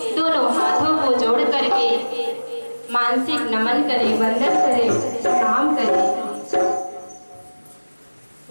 दोनों हाथों को जोड़ करके मानसिक नमन करें, वंदन करें, प्रणाम करें।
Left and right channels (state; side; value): inverted; both; correlation -1.00